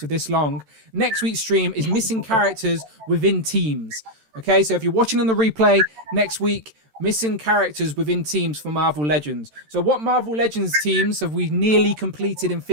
this long. Next week's stream is missing characters within teams. Okay, so if you're watching on the replay next week, missing characters within teams for Marvel Legends. So what Marvel Legends teams have we nearly completed in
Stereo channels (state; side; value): late; left; 13 ms